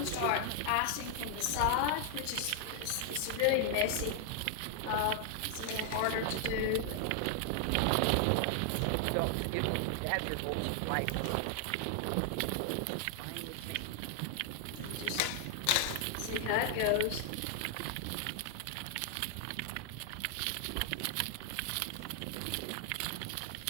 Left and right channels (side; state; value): both; different; correlation 0.00